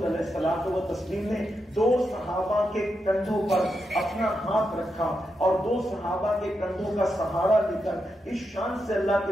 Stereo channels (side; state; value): both; normal; correlation 0.85